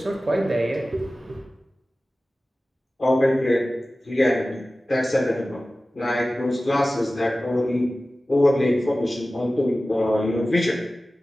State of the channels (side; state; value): both; normal; correlation 0.96